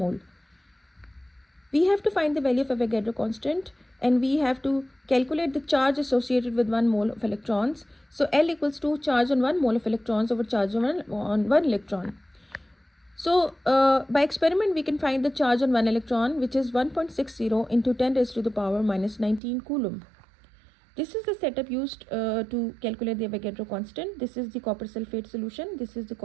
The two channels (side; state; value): left; drops out; at 19.4 s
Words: We have to find the value of Avogadro constant and we have to calculate the charge associated with 1 mole of electrons. So L equals to charge on 1 mole of electrons over charge on 1 electron. So by experiment we can find the charge on 1 electron, which is 1.60 into 10 raised to the power minus 19 coulomb. This is the setup used to calculate the Avogadro constant. This is the copper sulfate solution. This is the